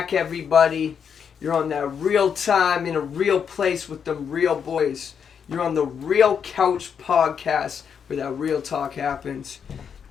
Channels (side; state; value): right; quieter; 7.2 dB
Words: everybody. You're on that real time in a real place with them real boys. You're on the Real Couch Podcast where that real talk happens.